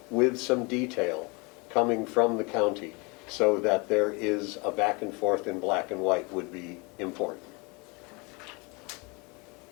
with some detail coming from the county so that there is a back and forth in black and white would be important.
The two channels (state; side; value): quieter; right; 28.8 dB